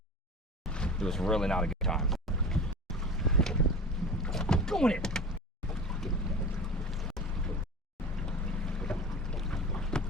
It was really not a good time. Going in.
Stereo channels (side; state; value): both; normal; correlation 0.34